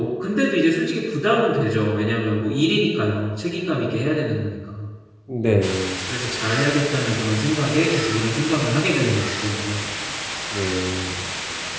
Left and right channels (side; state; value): both; identical; correlation 1.00